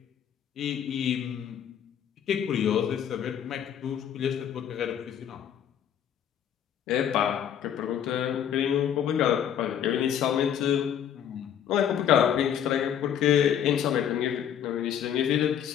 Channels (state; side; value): quieter; right; 9.3 dB